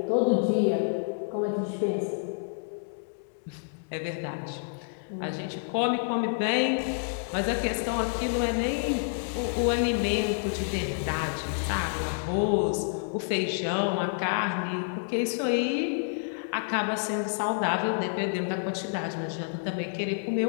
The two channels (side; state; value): right; silent; digital silence